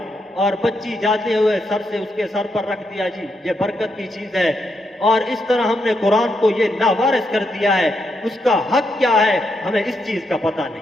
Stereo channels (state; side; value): normal; both; correlation 0.80